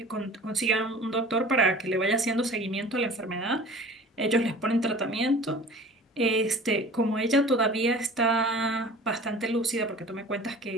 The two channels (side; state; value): both; normal; correlation 0.43